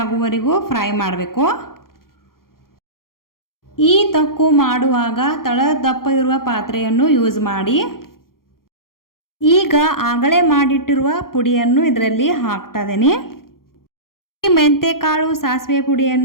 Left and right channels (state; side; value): late; right; 0.92 ms